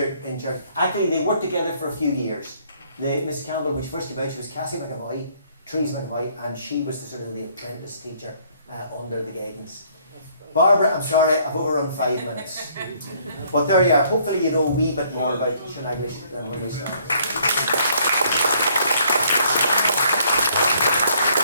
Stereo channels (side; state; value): both; inverted; correlation -0.64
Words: in church. Actually, they worked together for a few years. Mrs. Campbell, when she first came out, she was Cassie McAvoy, Therese McAvoy, and she was the sort of the apprentice teacher under the guidance. Barbara, I'm sorry, I've overrun 5 minutes. But there you are. Hopefully you know a wee bit more about Shaneglish than when we started.